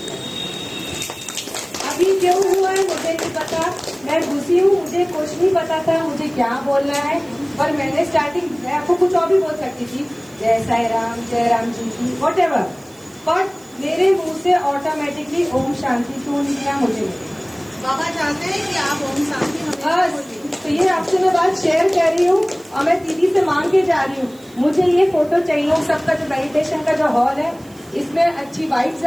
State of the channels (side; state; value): right; noise; hiss, 26 dB below the sound